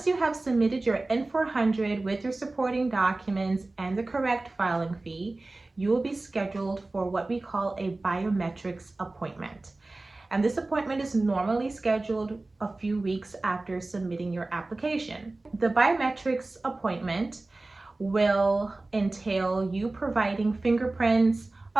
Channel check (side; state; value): left; quieter; 3.1 dB